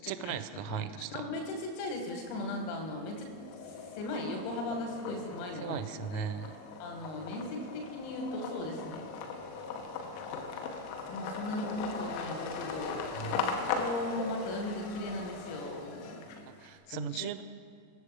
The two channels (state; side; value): late; right; 38 ms